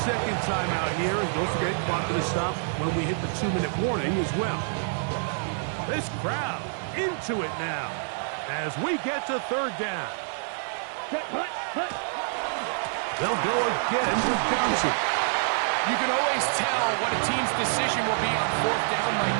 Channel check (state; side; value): silent; left; 60 dB below the other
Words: 2nd timeout here, and don't forget, clock to stop when we hit the 2-minute warning as well. This crowd into it now as we get to 3rd down. Hut, hut. They'll go again with Johnson. You can always tell what a team's decision will be on 4th down,